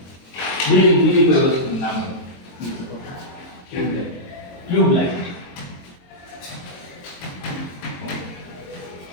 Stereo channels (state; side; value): late; right; 22 ms